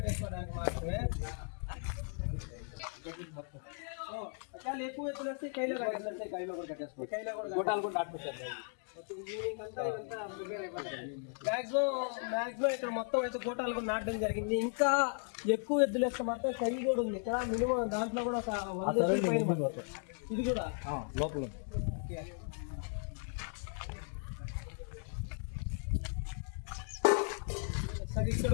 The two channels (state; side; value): silent; right; 54 dB below the other